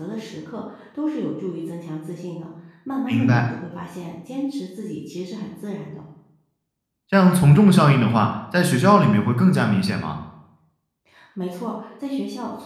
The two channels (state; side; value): identical; both; correlation 1.00